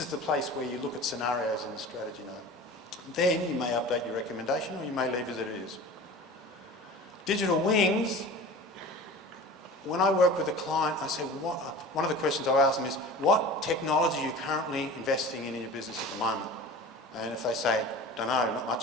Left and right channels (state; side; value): normal; both; correlation 0.37